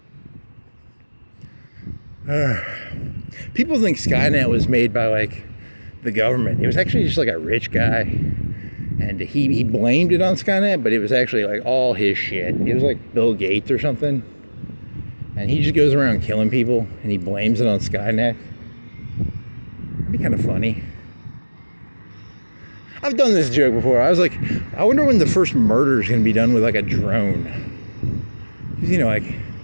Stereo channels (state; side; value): inverted; both; correlation -1.00